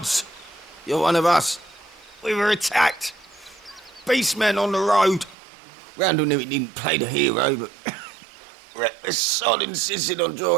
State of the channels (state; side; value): drops out; left; at 5.4 s